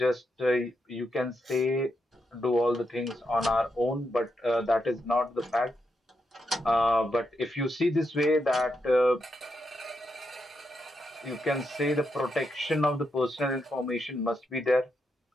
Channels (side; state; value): both; normal; correlation 0.83